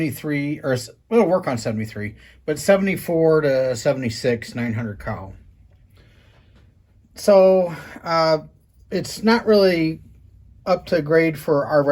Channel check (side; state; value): both; identical; correlation 1.00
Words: or it'll work on 73, but 74 to 76 900 cow. So it's not really up to grade for our